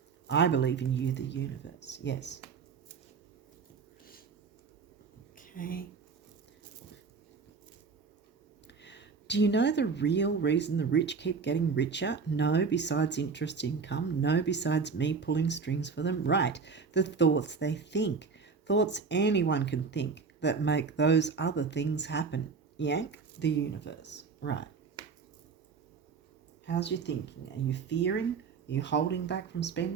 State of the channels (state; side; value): quieter; left; 5.2 dB